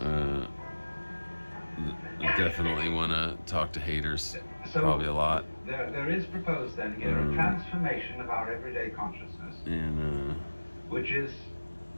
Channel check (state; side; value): inverted; both; correlation -1.00